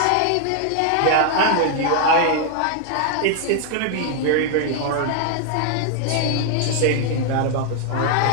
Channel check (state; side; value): different; both; correlation 0.00